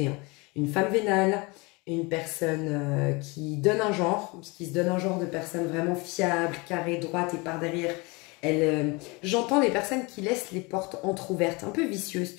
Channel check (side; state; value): right; quieter; 26.9 dB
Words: Hein. Une femme vénale, une personne qui donne un genre, qui se donne un genre de personne vraiment fiable, carrée, droite et par derrière. J'entends des personnes qui laissent les portes entrouvertes, un peu vicieuses,